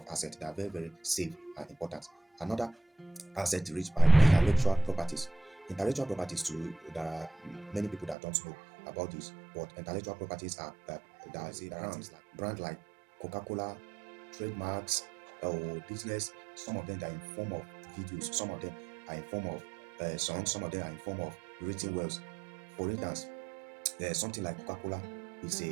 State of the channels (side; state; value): left; drops out; at 8.2 s